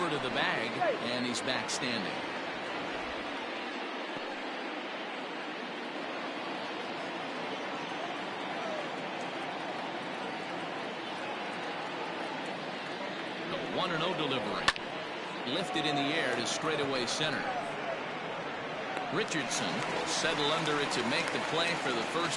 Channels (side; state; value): both; identical; correlation 1.00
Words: to the bag, and he's back standing. The 1-0 delivery. Lifted in the air to straightaway center. Richardson will settle under it to make the play for the